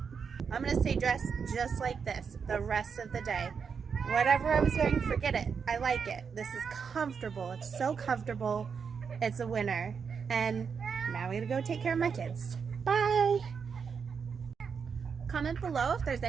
I'm gonna stay dressed just like this the rest of the day. Whatever I was wearing, forget it. I like it. This is comfortable. It's so comfortable. It's a winner. And now we gotta go take care of my kids. Bye! Comment below if there's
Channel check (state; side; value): quieter; left; 6.2 dB